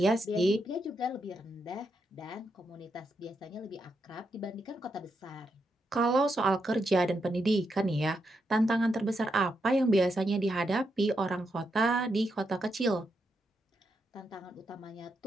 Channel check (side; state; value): both; normal; correlation 0.82